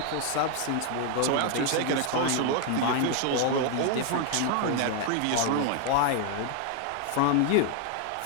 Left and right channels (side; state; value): both; different; correlation 0.00